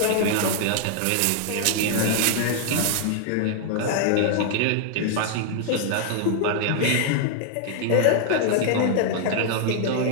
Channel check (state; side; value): different; both; correlation 0.00